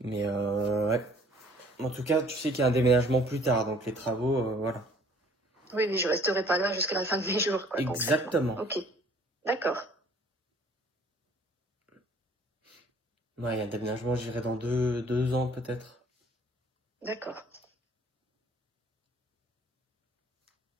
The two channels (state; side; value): normal; both; correlation 0.56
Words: Mais ouais. En tout cas, tu sais qu'il y a un déménagement plus tard, donc les travaux, voilà. Oui, oui, je resterai pas là jusqu'à la fin de mes jours, quoi, concrètement. Exactement. Ok, d'accord. Ouais, il y a un déménagement, j'irai dans deux ans peut-être. D'accord.